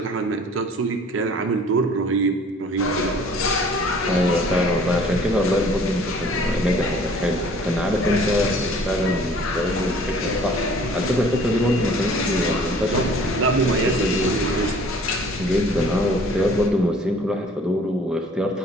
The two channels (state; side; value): normal; both; correlation 0.52